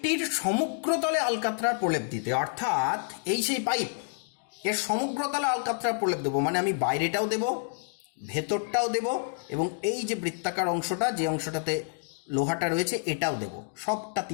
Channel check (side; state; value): right; silent; digital silence